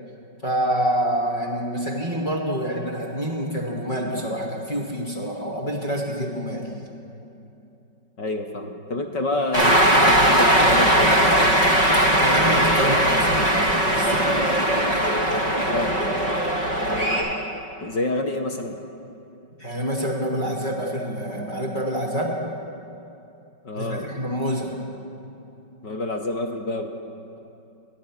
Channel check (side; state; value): right; late; 5.3 ms